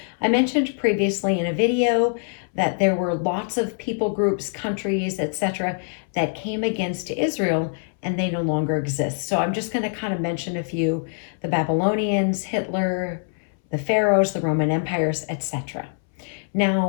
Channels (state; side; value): silent; right; 63 dB below the other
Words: I mentioned previously in a video that there were lots of people groups, countries, etc. that came against Israel and they no longer exist. So I'm just going to kind of mention a few: the Babylonians, Hitler, the Pharaohs, the Roman empires, etc.